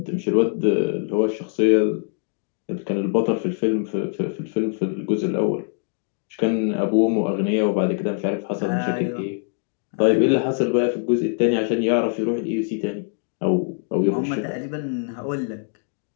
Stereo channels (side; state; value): right; silent; 56 dB below the other